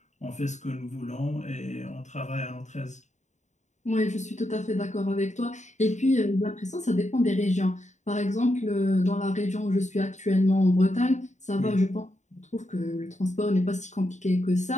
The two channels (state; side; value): late; right; 0.34 ms